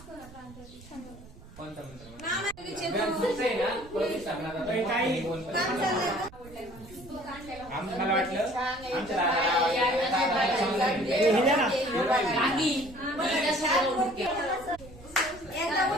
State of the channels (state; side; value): noise; right; rumble, 20 dB below the sound